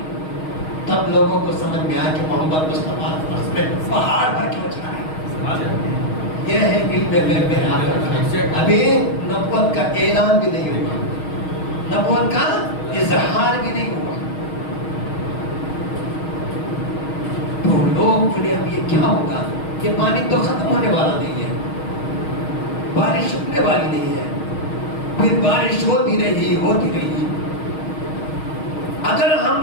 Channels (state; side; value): late; right; 6.4 ms